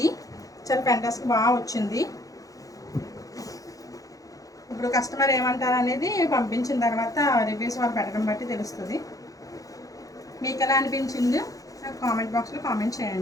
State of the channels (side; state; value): right; late; 0.17 ms